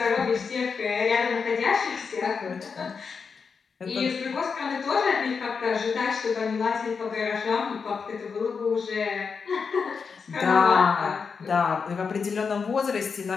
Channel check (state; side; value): quieter; right; 5.5 dB